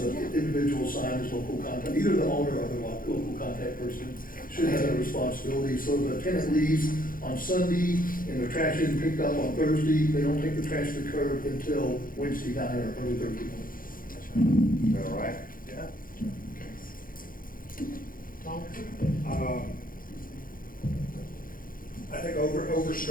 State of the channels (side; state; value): right; late; 0.41 ms